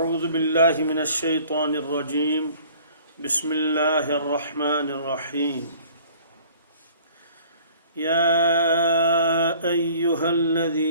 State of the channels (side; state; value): both; inverted; correlation -0.52